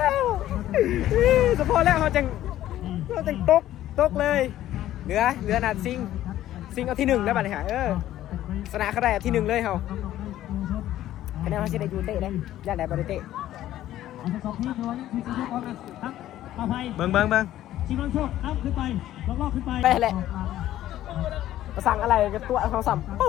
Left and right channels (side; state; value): right; quieter; 13.3 dB